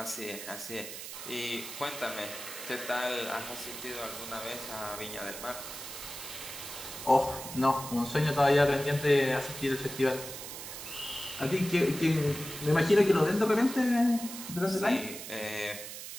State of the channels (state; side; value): noise; right; hiss, 10 dB below the sound